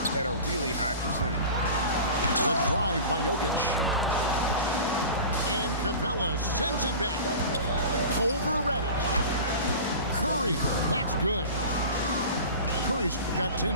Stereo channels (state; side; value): inverted; both; correlation -0.35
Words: at a really high percentage. The drive by Jokic. And Capella sends it back. Over Reddish. Curry. That's good. Curry's got